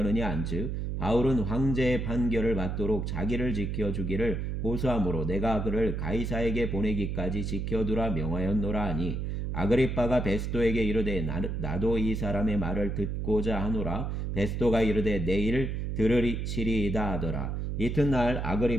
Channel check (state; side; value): noise; right; hum, 2 dB below the sound